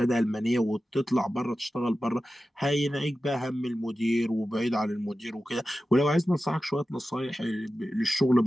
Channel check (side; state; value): both; normal; correlation 0.94